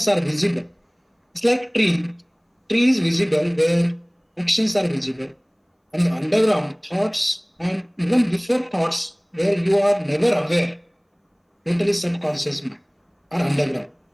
are visible. It's like tree. Tree is visible where actions are visible. And the underground thoughts and even before thoughts where you are never aware, totally subconscious mind are underground.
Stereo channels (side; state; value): both; identical; correlation 1.00